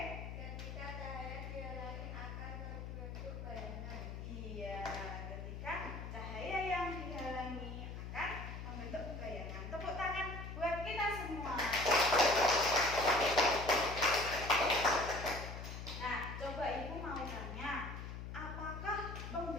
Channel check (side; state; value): left; noise; hum, 7 dB below the sound